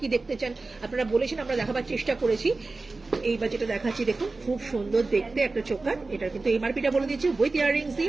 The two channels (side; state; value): left; quieter; 3.6 dB